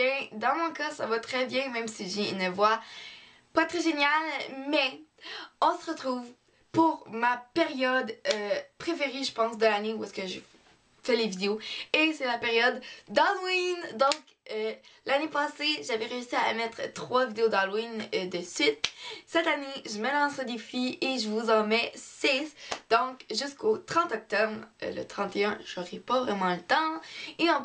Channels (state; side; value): identical; both; correlation 1.00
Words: Dans mon cas, ça va très bien, même si j'ai une voix pas très géniale. Mais on se retrouve pour ma période préférée, je pense, de l'année où est-ce que je fais les vidéos. Et c'est la période d'Halloween. Donc, l'année passée, j'avais réussi à mettre 3 vidéos d'Halloween de suite. Cette année, je me lance au défi et je vous en mets 6. Donc, jusqu'au 30 octobre, le 31, j'aurai pas vraiment le temps. Et en